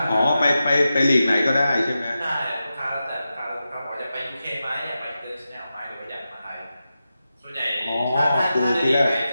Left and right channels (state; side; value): inverted; both; correlation -0.91